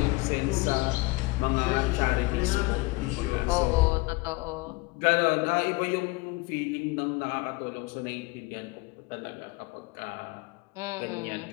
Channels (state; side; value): quieter; right; 23.9 dB